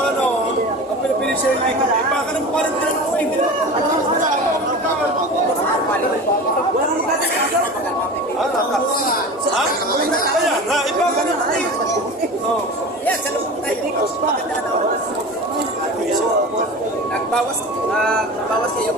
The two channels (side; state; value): both; normal; correlation 0.32